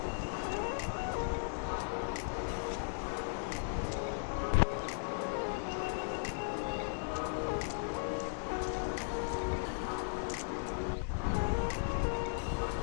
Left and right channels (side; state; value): right; silent; digital silence